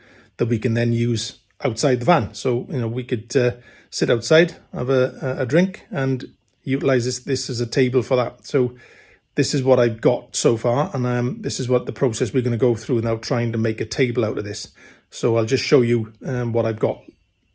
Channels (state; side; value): identical; both; correlation 1.00